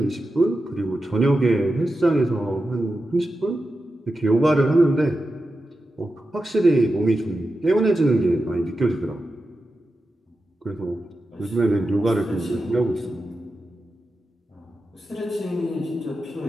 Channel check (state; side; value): normal; both; correlation 0.91